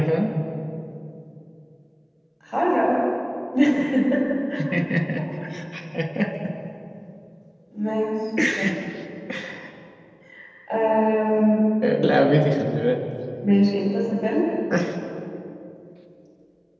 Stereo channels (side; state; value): both; identical; correlation 1.00